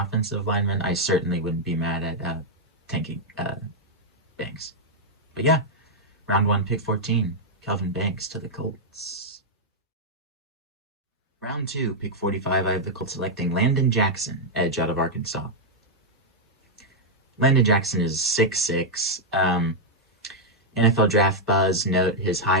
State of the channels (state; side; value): normal; both; correlation -0.04